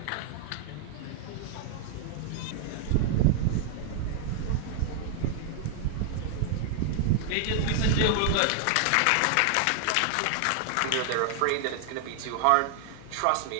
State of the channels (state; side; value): different; both; correlation 0.00